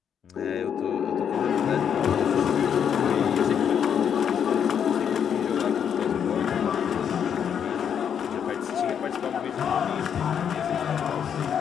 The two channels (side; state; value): right; quieter; 8.1 dB